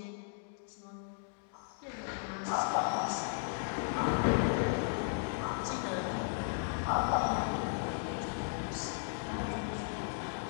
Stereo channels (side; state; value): right; silent; digital silence